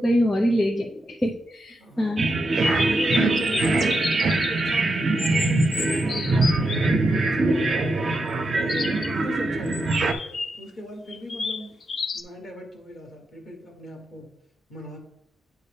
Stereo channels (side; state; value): both; normal; correlation 0.85